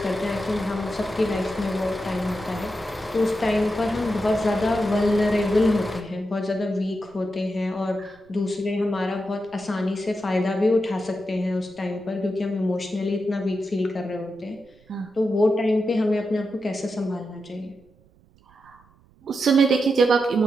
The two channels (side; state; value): right; noise; rumble, 30 dB below the sound